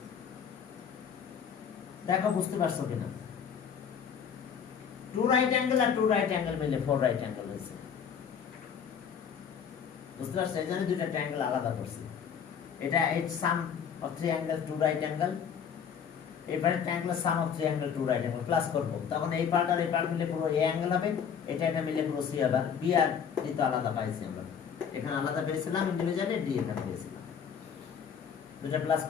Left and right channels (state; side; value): quieter; right; 7.5 dB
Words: দেখো বুঝতে পারছো কিনা, 2 রাইট অ্যাঙ্গেল আর 2 রাইট অ্যাঙ্গেল মিলে 4 রাইট অ্যাঙ্গেল হয়েছে, বুঝতে পারছো? এই জন্য দুইটা ট্রায়াঙ্গেল আলাদা করছি, এটা এই সাম অফ 3 অ্যাঙ্গেল 2 রাইট অ্যাঙ্গেল, এবারে ট্রায়াঙ্গেল সাম of 3 angle 2 right angle plus করব, তখন এই পার্ট আর এই পার্ট মিলে পুরো এ অ্যাঙ্গেল হবে, এটা এটা মিলে পুরো সি হবে। বি আর ডি তো আলাদা পাইছি আমরা, এখানে আলাদা পেয়েছিলাম ইন্ডিভিজুয়ালি, ডি এখানে পেয়েছিলাম, দুটো প্লাস